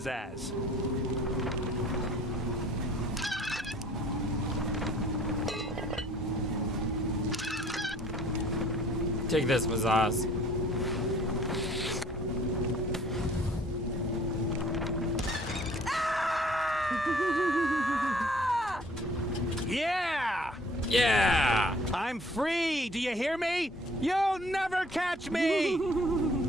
Take this, Mazaz. Yeah! Yeah! I'm free! Do you hear me? You'll never catch me!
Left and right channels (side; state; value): both; normal; correlation 0.54